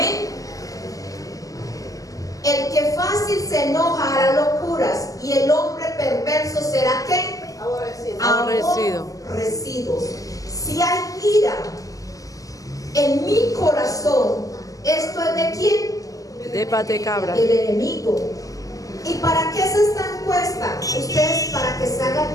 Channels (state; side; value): late; right; 0.17 ms